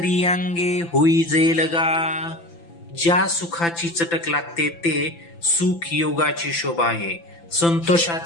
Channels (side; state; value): right; late; 5.9 ms